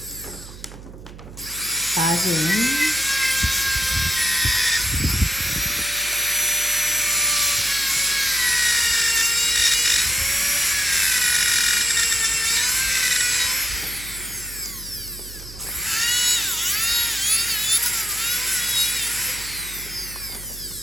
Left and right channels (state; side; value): noise; right; hum, 16 dB below the sound